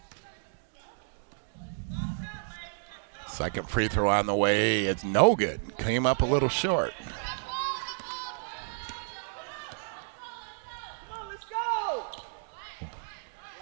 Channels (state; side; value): silent; left; digital silence